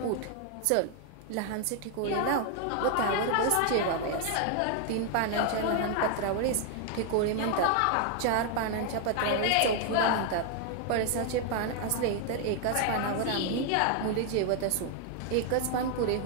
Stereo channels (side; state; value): both; different; correlation 0.00